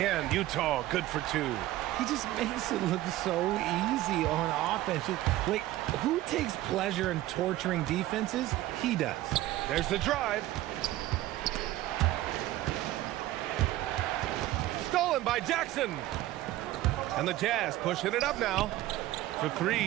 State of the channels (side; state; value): left; quieter; 15.6 dB